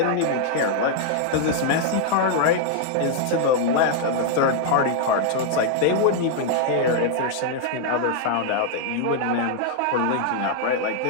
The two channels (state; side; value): different; both; correlation -0.01